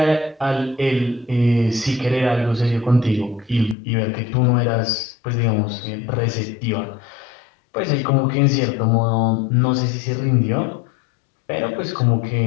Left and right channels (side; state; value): right; drops out; at 3.8 s